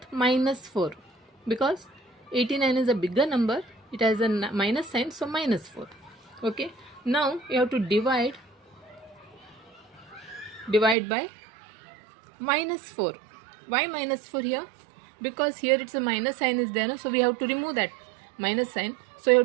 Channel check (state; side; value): drops out; left; at 11.0 s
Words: minus 4, because 89 is a bigger number, it has a minus sign, so minus 4. Okay, now you have to divide by minus 4. Why minus 4 here? Because here it's a minus sign is there, no? So we have to remove that minus sign, so you